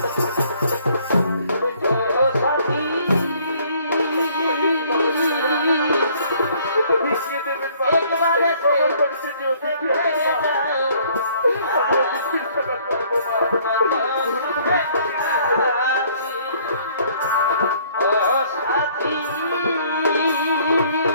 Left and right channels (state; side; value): inverted; both; correlation -0.60